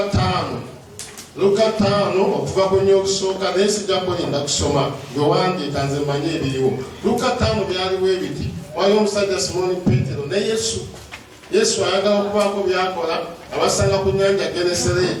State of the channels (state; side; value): identical; both; correlation 1.00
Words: Luka 5 okuva ku nnyo okusooka naye sijja kulinda kusoma bwewandiika nze manye ebiriwo. Luka 5 byaliwo ebiti waliwo omusajja Simoni Petero ne Yesu ayagala okubaako byakola abasanga ku nnyanja